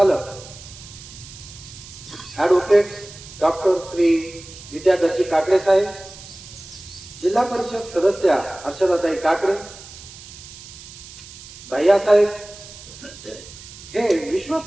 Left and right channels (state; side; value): noise; right; hiss, 17 dB below the sound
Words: ॲडव्होकेट डॉक्टर श्री विद्याधरजी काकडे साहेब, जिल्हा परिषद सदस्या हर्षदाताई काकडे, भैयासाहेब हे